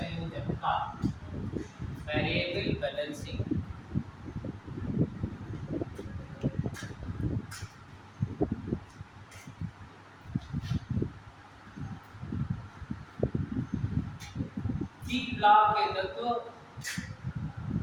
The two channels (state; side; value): identical; both; correlation 1.00